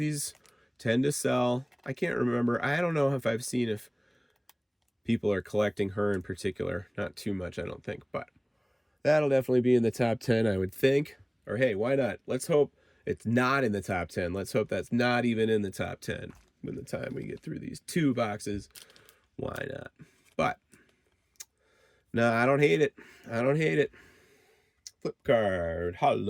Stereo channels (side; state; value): both; identical; correlation 1.00